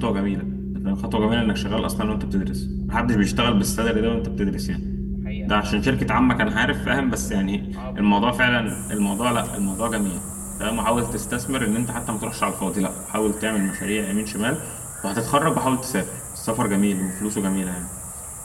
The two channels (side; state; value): both; identical; correlation 1.00